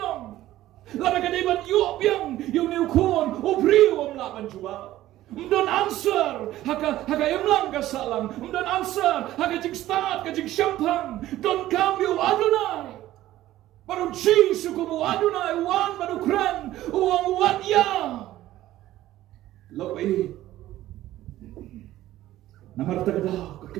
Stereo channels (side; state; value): left; quieter; 14.6 dB